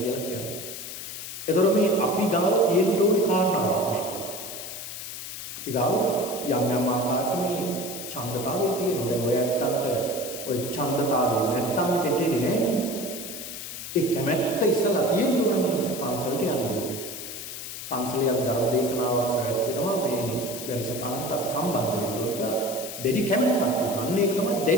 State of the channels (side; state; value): left; noise; hiss, 9 dB below the sound